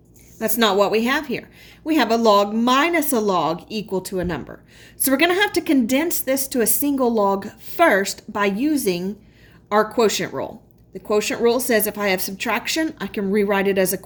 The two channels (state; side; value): identical; both; correlation 1.00